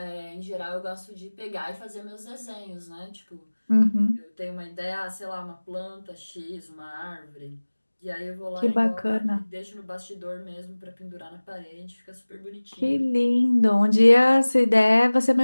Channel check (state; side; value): inverted; both; correlation -1.00